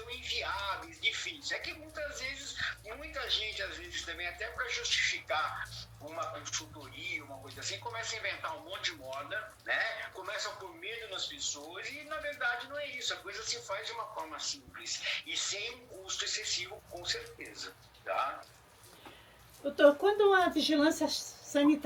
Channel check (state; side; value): identical; both; correlation 1.00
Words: inviáveis, difíceis. É que muitas vezes, muita gente, às vezes também, até para justificar uma consultoria, uma coisa assim, começa a inventar um monte de moda, né? Começa a pôr medo nas pessoas e, na verdade, não é isso. A coisa se faz de uma forma simples e sem um custo excessivo, com certeza, tá? Doutor, quando a vigilância